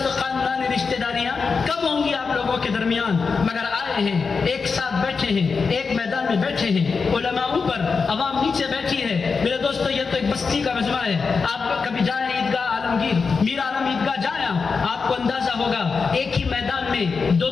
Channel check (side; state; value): right; quieter; 5.0 dB